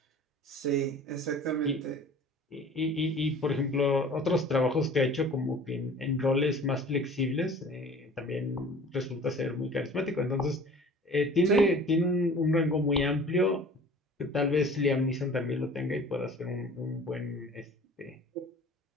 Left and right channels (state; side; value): normal; both; correlation 0.45